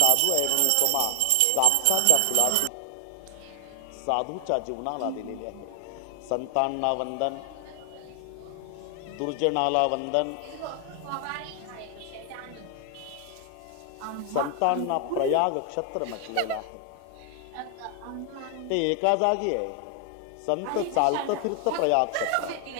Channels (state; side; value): different; both; correlation 0.00